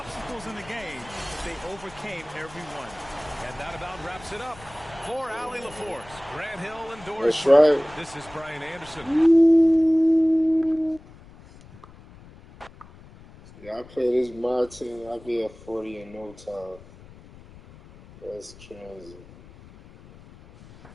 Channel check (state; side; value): noise; left; rumble, 21 dB below the sound